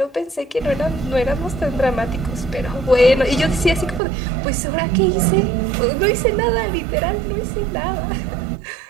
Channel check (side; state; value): left; drops out; at 4.0 s